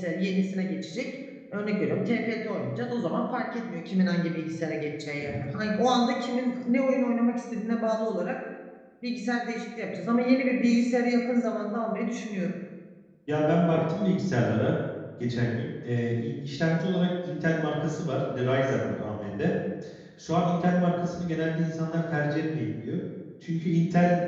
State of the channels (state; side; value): identical; both; correlation 1.00